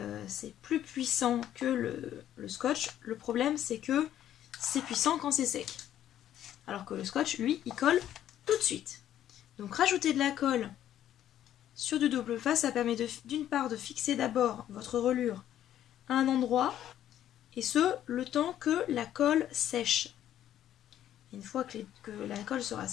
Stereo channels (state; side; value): quieter; right; 11.4 dB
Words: c'est plus puissant que le scotch. Le problème c'est que c'est puissant quand c'est sec. Alors que le scotch, lui, il colle tout de suite. Donc rajouter de la colle sur du double face, ça permet d'une part de fixer d'abord votre reliure à un endroit, et ce, le temps que la colle sèche. Et une fois que la colle sera